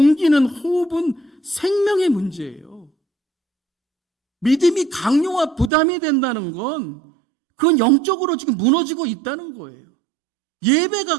호흡은 생명의 문제예요. 믿음이 강요와 부담이 된다는 건 그건 영적으로 지금 무너지고 있다는 거예요.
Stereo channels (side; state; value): left; drops out; at 5.7 s